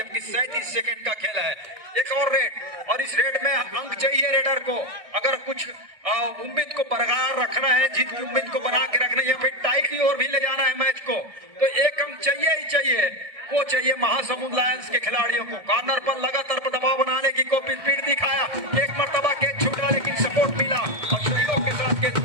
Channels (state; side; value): late; left; 1.6 ms